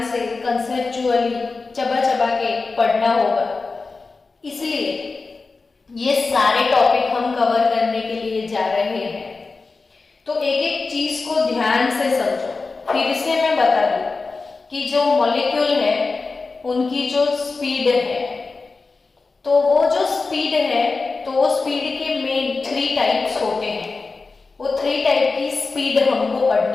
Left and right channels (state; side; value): quieter; right; 4.0 dB